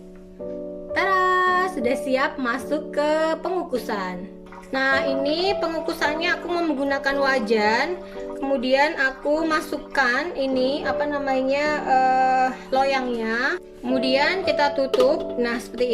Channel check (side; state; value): both; identical; correlation 1.00